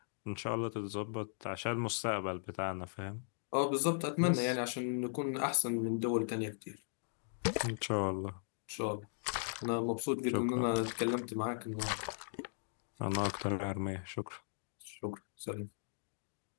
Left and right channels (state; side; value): silent; right; digital silence